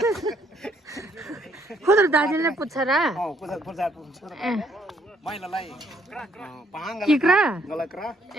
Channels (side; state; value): both; normal; correlation 0.68